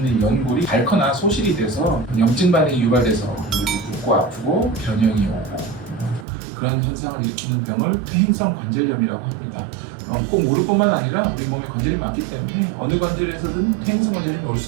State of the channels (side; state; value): left; drops out; at 6.2 s